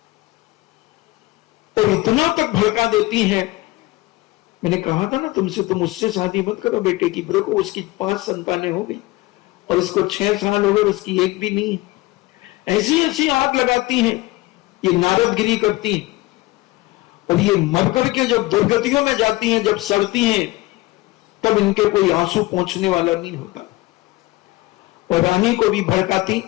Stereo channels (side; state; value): right; quieter; 20.0 dB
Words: और इतना तक भड़का देती है मैंने कहा था ना तुमसे, तुम उससे शादी मत करो बेटे की। देखो उसकी 5 संतानें हो गई और इसको 6 साल हो गए, उसकी एक भी नहीं है। ऐसी ऐसी आग लगाती हैं, ये नारदगिरी करती हैं, और ये मरकर के जब दुर्गतियों में जाती हैं, जब सड़ती हैं, तब इनके कोई आंसू पहुंचने वाला नहीं होता। और रानी को भी भड़काती,